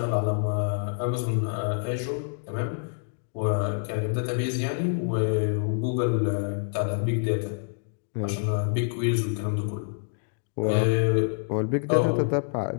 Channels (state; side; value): silent; right; digital silence